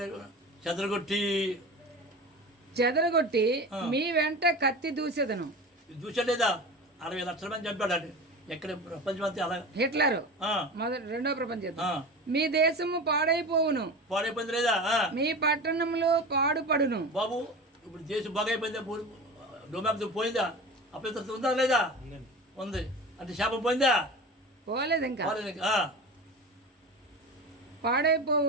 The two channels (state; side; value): normal; both; correlation 0.31